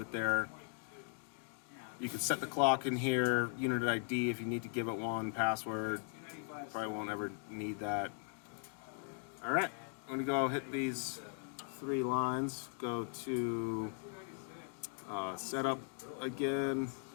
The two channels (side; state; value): right; silent; 52 dB below the other